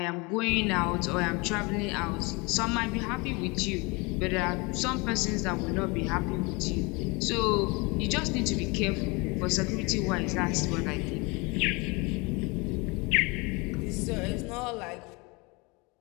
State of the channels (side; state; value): right; quieter; 27.4 dB